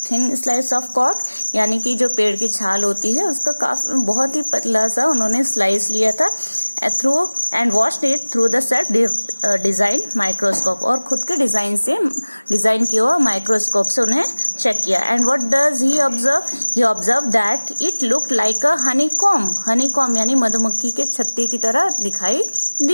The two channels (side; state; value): both; inverted; correlation -1.00